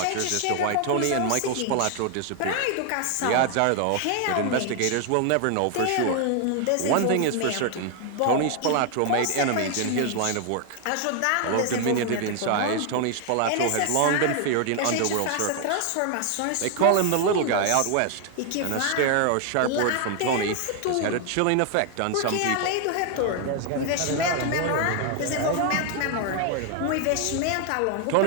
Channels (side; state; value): both; different; correlation 0.00